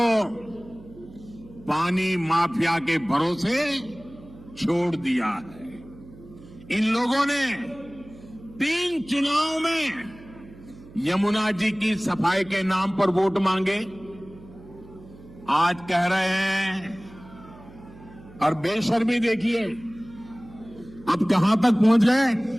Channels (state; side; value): noise; right; hum, 20 dB below the sound